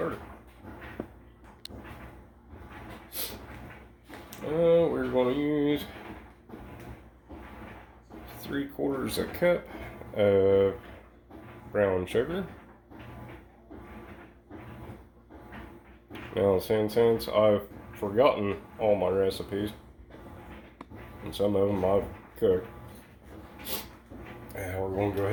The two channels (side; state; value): both; identical; correlation 1.00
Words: We're going to use 3/4 cup of brown sugar. Now, since I've forgotten all my recipes, and some of them I've cooked, we're going to go